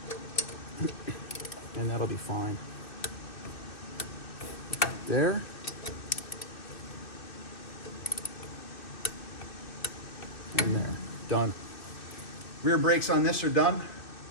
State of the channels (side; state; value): right; late; 2.6 ms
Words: And that'll be fine. There. And there. Done. Rear brakes on this are done.